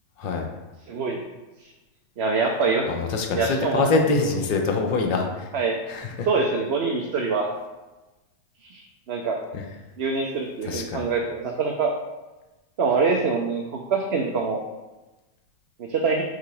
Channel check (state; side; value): late; left; 3.0 ms